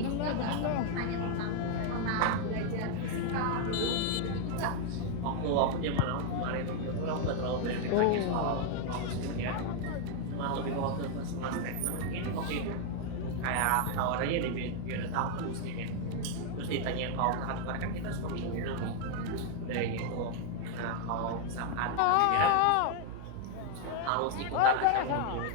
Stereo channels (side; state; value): both; different; correlation 0.00